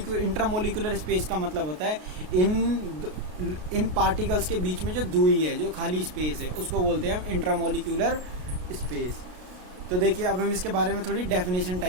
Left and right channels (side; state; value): left; late; 33 ms